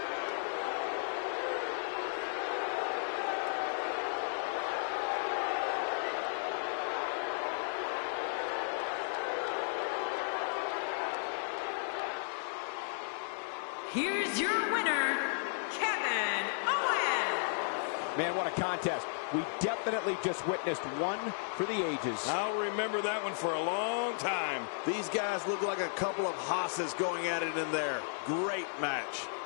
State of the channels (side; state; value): right; silent; digital silence